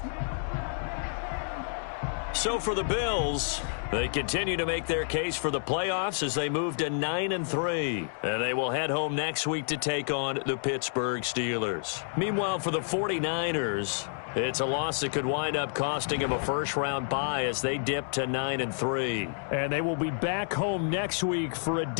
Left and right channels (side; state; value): right; silent; digital silence